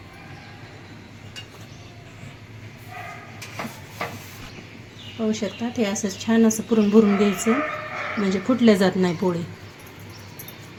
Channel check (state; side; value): identical; both; correlation 1.00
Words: पाहू शकता हे असं छान असं पुरण भरून घ्यायचं म्हणजे फुटल्या जात नाही पोळी.